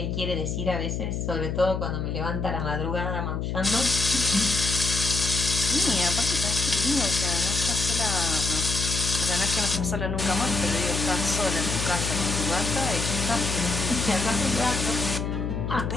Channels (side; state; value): left; noise; hum, 2 dB below the sound